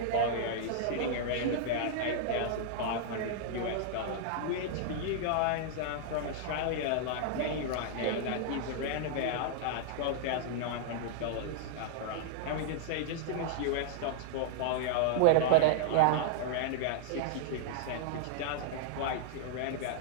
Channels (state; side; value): different; both; correlation -0.01